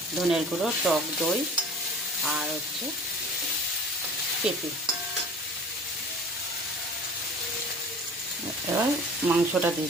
ধনের গুঁড়ো, টক দই, আর হচ্ছে পেঁপে। এবার মাংসটা দিয়ে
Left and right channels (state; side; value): normal; both; correlation 0.43